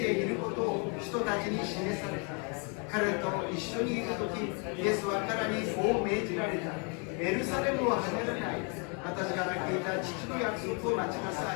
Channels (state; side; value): quieter; right; 36.2 dB